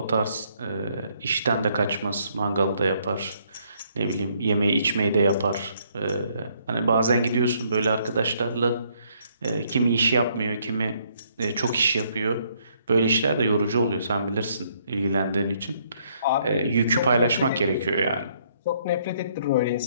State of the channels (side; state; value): both; inverted; correlation -0.69